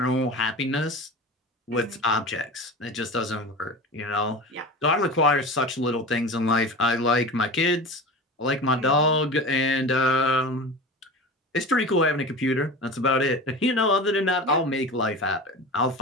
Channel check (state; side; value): normal; both; correlation 0.31